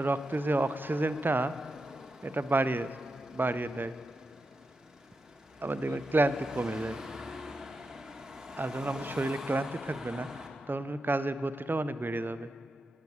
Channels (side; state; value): both; normal; correlation 0.88